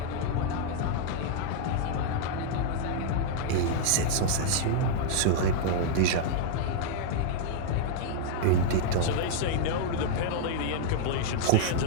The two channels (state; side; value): different; both; correlation -0.01